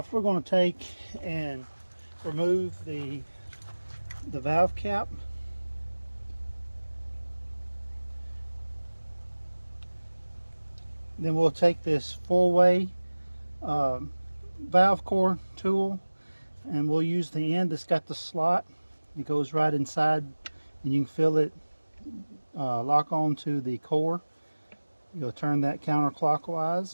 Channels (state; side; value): inverted; both; correlation -1.00